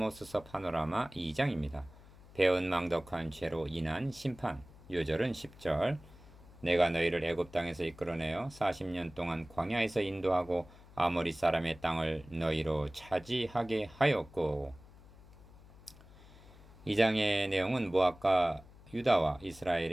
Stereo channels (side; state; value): left; noise; hum, 22 dB below the sound